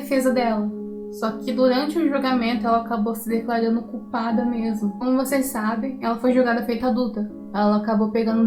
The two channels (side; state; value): both; identical; correlation 1.00